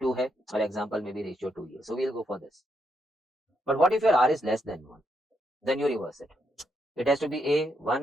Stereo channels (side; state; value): both; normal; correlation 0.79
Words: hai, or example may be ratio 2 here. So we'll go for this. But what if your r is less than 1? Then you reverse it. It has to be a